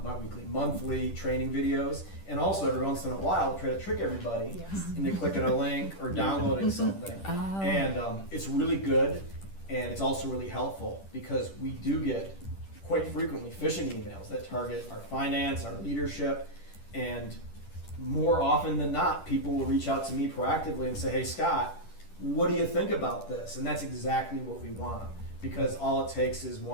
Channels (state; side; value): late; right; 10 ms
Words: training videos, and also every once in a while try to trick everybody Yes. into clicking a link or downloading something. Oh. And it's really good, and it's also really helpful because we do get quite frequently phishing emails that target our finance, our leadership, and more often than not, people will reach out to me proactively and say, "Hey, Scott, what do you think about this?" And that's exactly what we want, because all it takes is